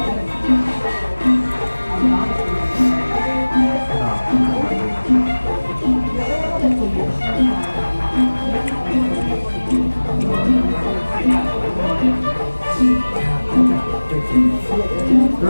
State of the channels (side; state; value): both; inverted; correlation -1.00